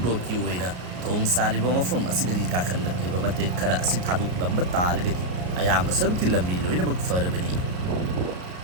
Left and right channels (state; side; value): late; left; 33 ms